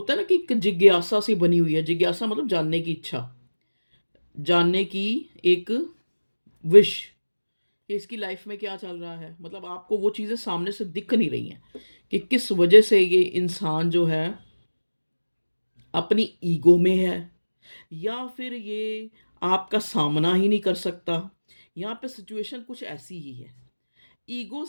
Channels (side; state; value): both; inverted; correlation -1.00